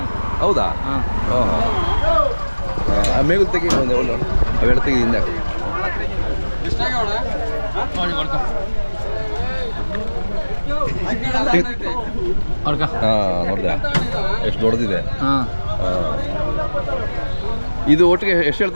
ಹೌದಾ ಹಾಂ ಹಾಂ ಆ ಮೇಗಲ್ ತೆಗಿ ಒಂದು ಅವೆರಡು ತೆಗಿ ಹಿಂದೆ ಹಾಕಿ ನೋಡಿ ಕೊಡ್ಕ ಕೊಡ್ಕ. ಹಾಂ ನೋಡಿದೆ ಎಷ್ಟು ದೊಡ್ಡದಿದೆ ಹಾಂ ಇದು ಒಟ್ಟಿಗೆ ಎಷ್ಟು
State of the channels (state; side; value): inverted; both; correlation -1.00